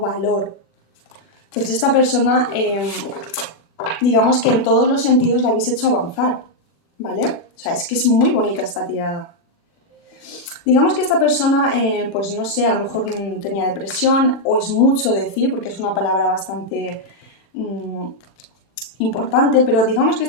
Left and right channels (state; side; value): late; right; 36 ms